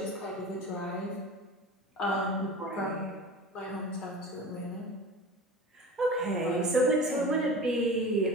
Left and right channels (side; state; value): both; normal; correlation 0.35